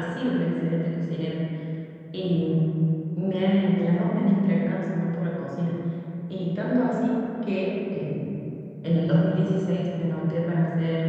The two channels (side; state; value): both; identical; correlation 1.00